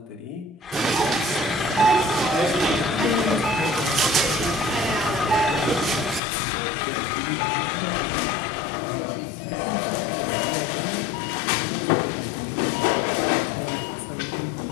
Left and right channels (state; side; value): drops out; right; at 6.2 s